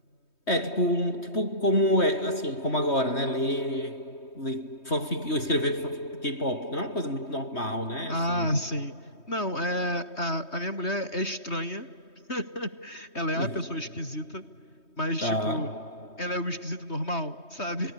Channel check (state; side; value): late; right; 3.2 ms